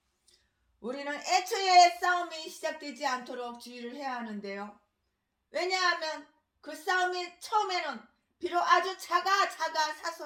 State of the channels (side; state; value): both; identical; correlation 1.00